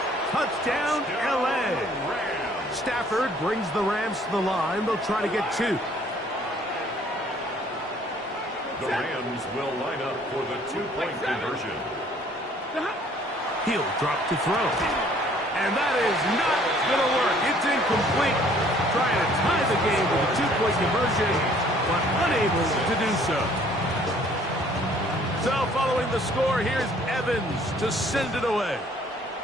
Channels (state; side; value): normal; both; correlation 0.58